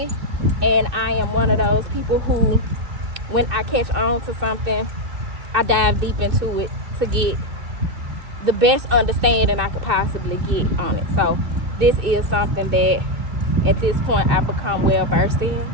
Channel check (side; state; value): left; late; 2.6 ms